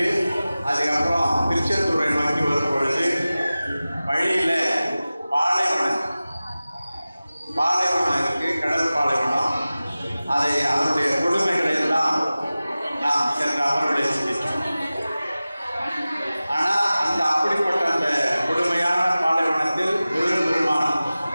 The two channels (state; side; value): inverted; both; correlation -0.97